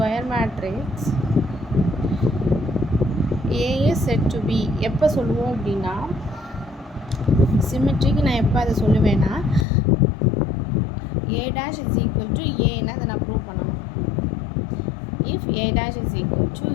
matrix A is said to be எப்போ சொல்லுவோம் அப்படின்னா சிமெட்ரிக்கு நான் எப்போ அதை சொல்லுவேன்னா A dash is equal to Aன்னு அதை நான் ப்ரூவ் பண்ணணும். if A dash is equal to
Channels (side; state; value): right; drops out; at 9.7 s